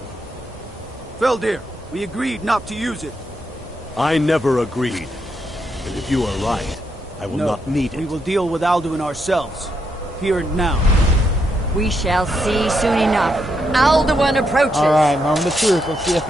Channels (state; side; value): normal; both; correlation 0.79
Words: Feldir, we agreed not to use it. I never agreed. And if you are right, I will not need it. We will deal with Alduin ourselves. Here and now. We shall see soon enough. Alduin approaches. Alright, moment of truth. Let's see if